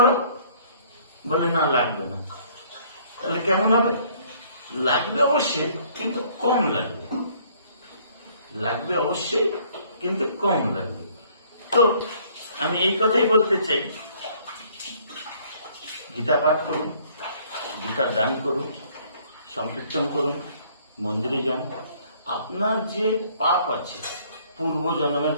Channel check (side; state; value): both; inverted; correlation -0.60